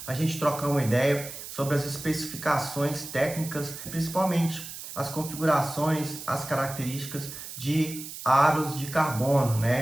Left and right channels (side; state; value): right; noise; hiss, 11 dB below the sound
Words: a gente trocar uma ideia sobre as especificações técnicas, principalmente as configurações, as características de aros de carbono,